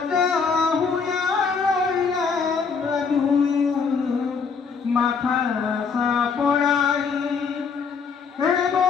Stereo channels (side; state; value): right; quieter; 5.5 dB